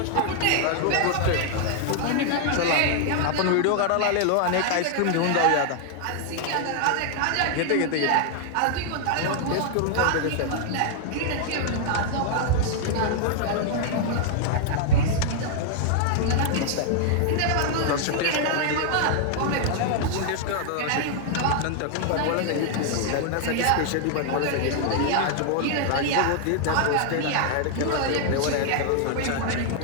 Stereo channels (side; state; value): both; different; correlation 0.00